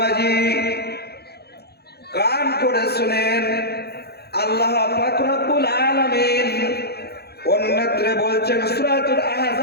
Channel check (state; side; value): late; right; 0.47 ms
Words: কান করে শুনেন, আল্লাহ পাক রব্বুল আলামিন অন্যত্র বলছেন, সূরাতুল